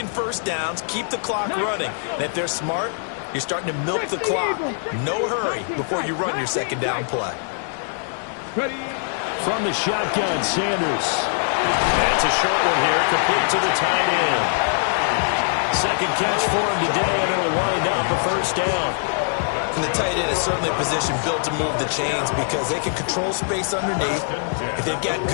first downs, keep the clock running. And if they're smart, you're starting to milk the clock. No hurry before you run your 2nd down play. From the shotgun, Sanders. That's a short one here, complete to the tight end. 2nd catch for him today, and it'll wind up a 1st down. And the tight end is certainly a position built to move the chains because they can control space underneath. If they've got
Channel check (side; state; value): right; silent; digital silence